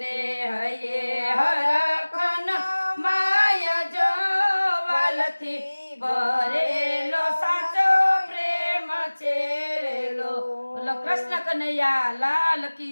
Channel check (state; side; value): inverted; both; correlation -1.00